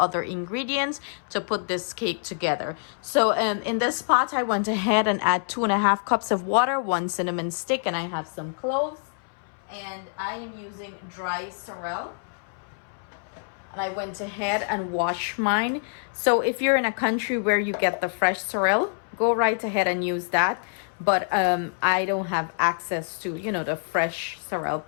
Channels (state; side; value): silent; right; 61 dB below the other